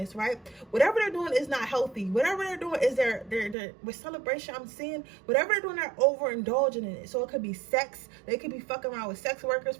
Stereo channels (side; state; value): left; drops out; at 3.6 s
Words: right? Whatever they're doing is not healthy. Whatever they're doing is they're with celebration, I'm seeing, whatever they're doing, they're overindulging in it. So it could be sex. They could be fucking around with sex workers,